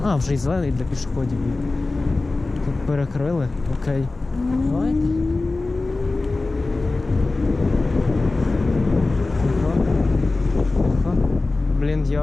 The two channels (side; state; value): right; quieter; 3.3 dB